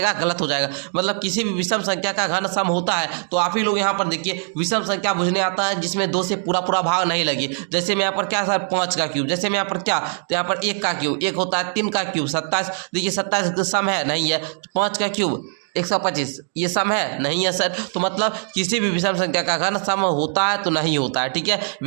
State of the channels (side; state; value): left; silent; 62 dB below the other